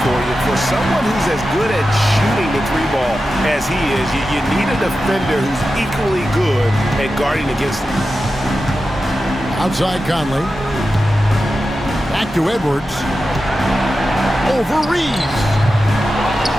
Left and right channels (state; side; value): normal; both; correlation 0.92